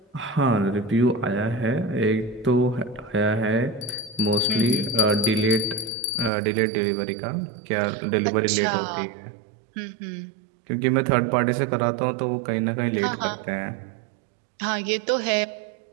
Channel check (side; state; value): left; drops out; at 6.3 s